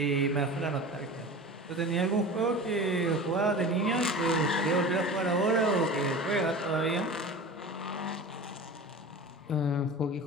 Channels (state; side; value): normal; both; correlation 0.34